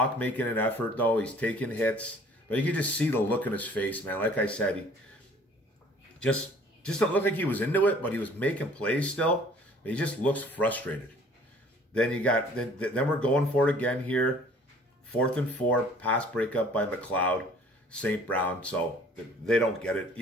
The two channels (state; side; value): normal; both; correlation 0.53